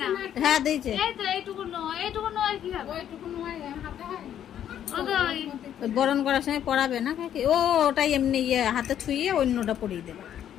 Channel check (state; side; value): quieter; right; 10.2 dB